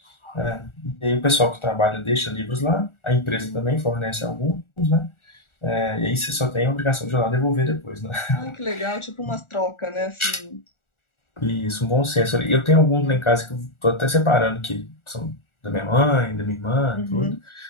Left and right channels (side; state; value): right; late; 1.4 ms